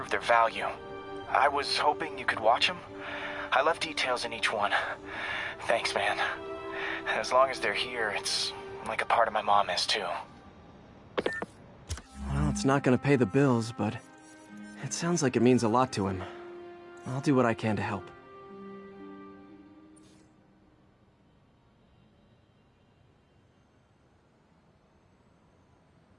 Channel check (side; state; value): both; identical; correlation 1.00